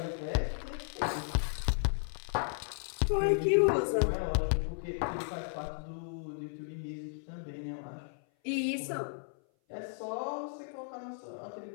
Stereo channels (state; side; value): silent; right; 55 dB below the other